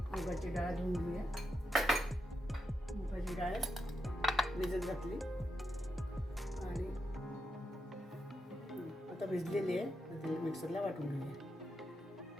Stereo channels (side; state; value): both; normal; correlation 0.85